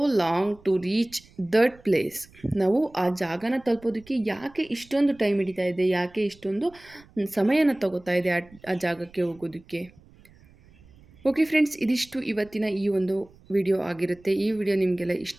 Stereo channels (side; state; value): right; noise; rumble, 26 dB below the sound